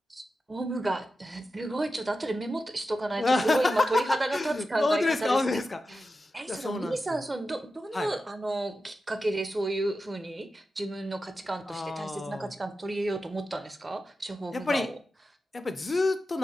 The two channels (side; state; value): both; normal; correlation 0.91